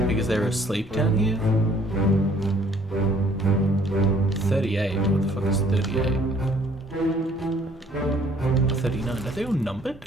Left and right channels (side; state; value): both; normal; correlation 0.60